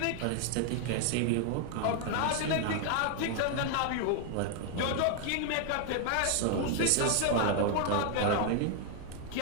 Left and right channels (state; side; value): different; both; correlation 0.00